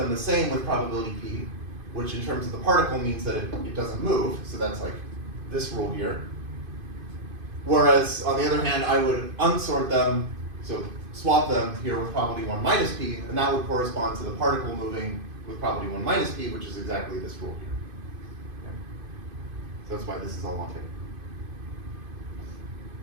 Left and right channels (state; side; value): late; left; 2.5 ms